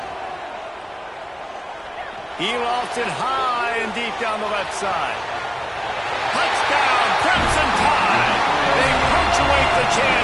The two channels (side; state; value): both; identical; correlation 1.00